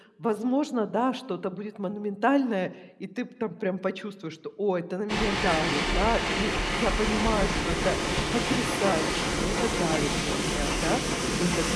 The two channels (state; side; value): identical; both; correlation 1.00